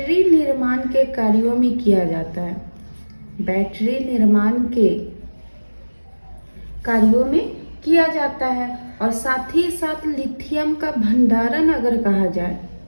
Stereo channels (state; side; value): inverted; both; correlation -1.00